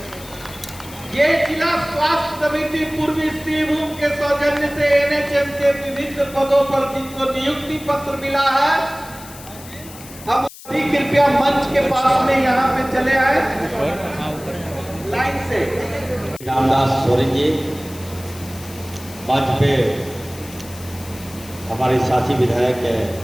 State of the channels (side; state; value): left; noise; hiss, 17 dB below the sound